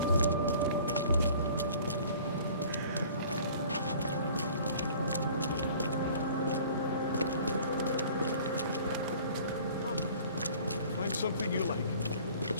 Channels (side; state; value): both; inverted; correlation -0.49